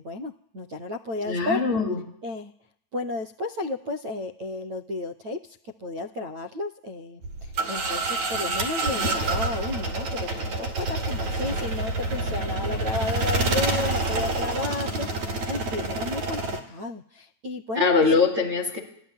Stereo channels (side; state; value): left; late; 9.1 ms